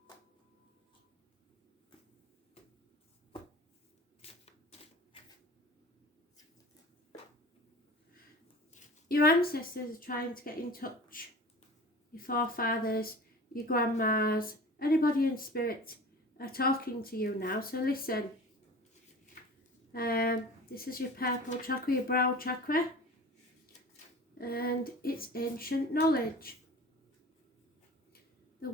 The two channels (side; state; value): both; normal; correlation 0.39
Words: Your ancestors are trying to get in touch. Your forefathers, your grandmas, anybody in spirit are talking to you now. So listen. This is your purple chakra, your brow chakra. And it's ancient knowledge. The